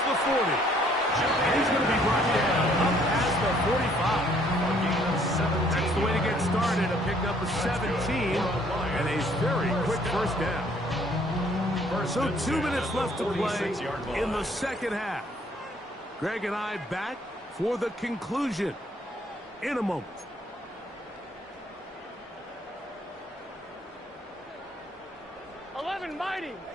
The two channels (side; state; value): both; normal; correlation 0.63